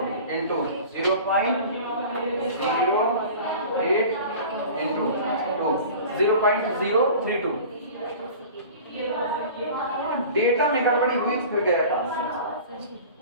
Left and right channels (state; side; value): inverted; both; correlation -0.39